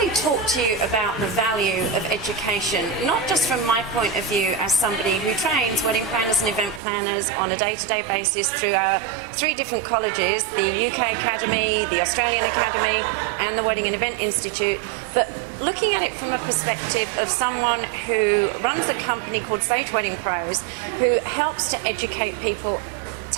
talk to you about the value of education, not just from my point of view as somebody who trains wedding planners and event planners on a day-to-day basis through our 3 different colleges, the UK Academy, the Australian Academy, and the Wedding and Event Institute, but looking at it from a perspective of someone who runs a company called Sage Wedding Pros, who helps to educate people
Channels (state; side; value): drops out; left; at 6.8 s